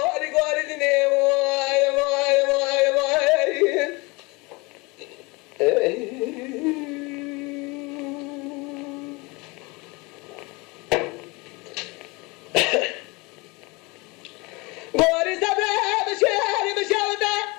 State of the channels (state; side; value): quieter; right; 25.9 dB